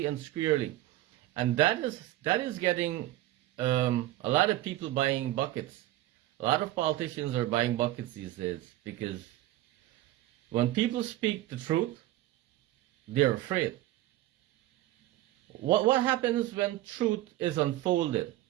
and squarely. And that is getting a lot of people buying buckets. A lot of politicians are buying buckets these days, because when people speak the truth, they're afraid. What happens when truth is unfolded?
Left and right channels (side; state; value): left; quieter; 15.5 dB